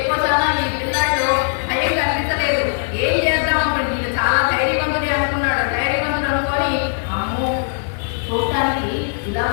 కోసాన ఈ పిల్లాడు భయం కనిపించలేదు. ఏం చేద్దాం అనుకుంటే ఈయన చాలా ధైర్యవంతుడే అనుకున్నాడు. ధైర్యవంతుడు అనుకొని అమ్మో చూడటానికి ఇలా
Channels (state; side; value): silent; right; digital silence